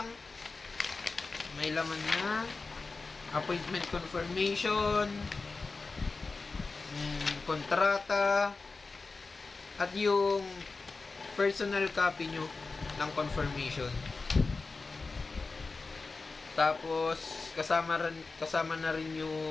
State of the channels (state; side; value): quieter; right; 4.0 dB